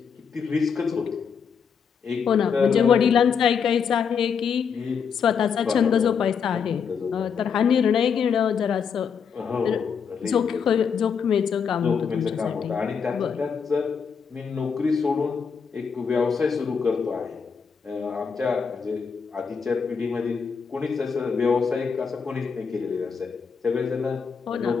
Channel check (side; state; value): right; quieter; 6.4 dB